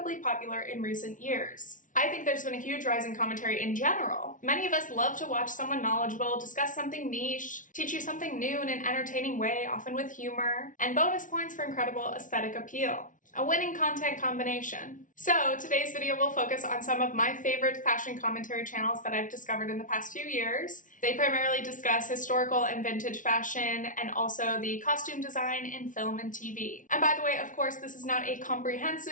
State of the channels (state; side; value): late; right; 0.38 ms